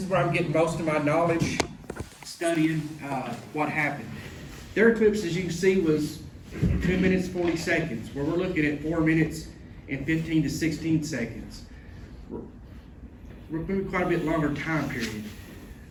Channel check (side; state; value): both; identical; correlation 1.00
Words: where I'm getting most of my knowledge, studying what happened. Their eclipse, as you can see, was 2 minutes 40 seconds, where we're looking at 4 minutes and 15 to 16 seconds. We're moving quite a bit longer time period.